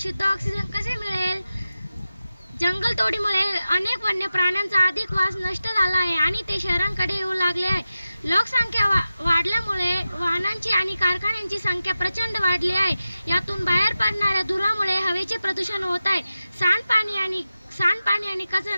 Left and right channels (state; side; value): inverted; both; correlation -0.93